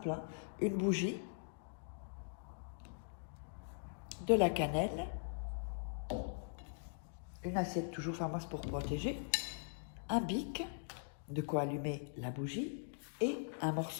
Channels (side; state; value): right; silent; digital silence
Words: hein. Une bougie, de la cannelle, une assiette toujours Pharmas pour protéger, un bic, de quoi allumer la bougie, et un